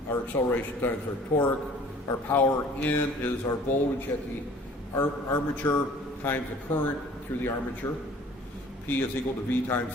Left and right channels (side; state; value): both; normal; correlation 0.51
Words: our acceleration times our torque. Our power in is our voltage at the armature times the current through the armature. P is equal to V